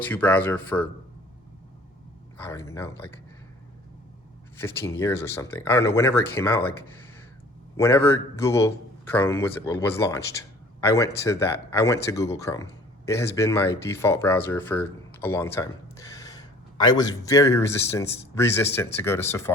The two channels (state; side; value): normal; both; correlation 0.51